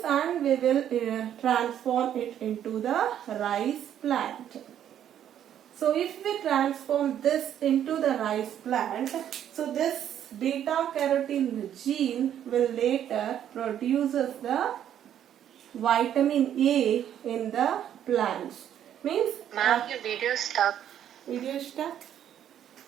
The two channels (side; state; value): left; quieter; 10.2 dB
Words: and we will transform it into the rice plant. So if we transform this into the rice plant, so this beta carotene gene will later produces the vitamin A in the plants. Means Ma'am, your video is stuck. video stuck.